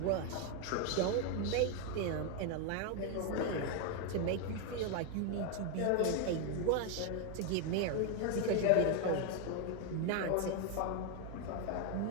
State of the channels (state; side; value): different; both; correlation 0.01